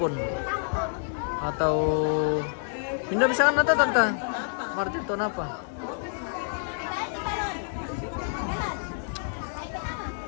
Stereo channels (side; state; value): right; silent; 59 dB below the other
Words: atau pindah bisa kan nata tante Martin ton apa?